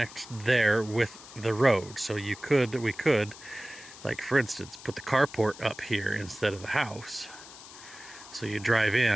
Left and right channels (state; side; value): noise; left; hiss, 17 dB below the sound